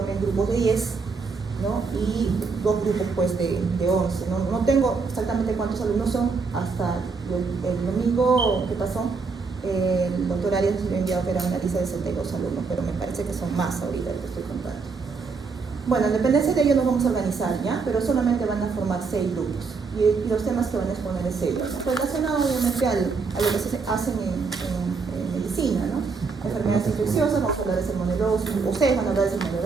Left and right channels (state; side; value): quieter; left; 4.7 dB